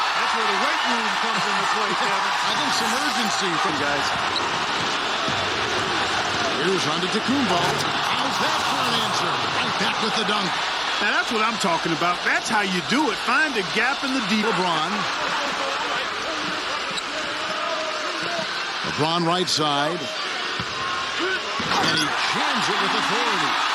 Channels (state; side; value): identical; both; correlation 1.00